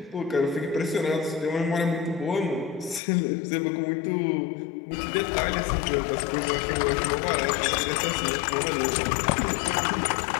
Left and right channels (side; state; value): right; drops out; at 3.0 s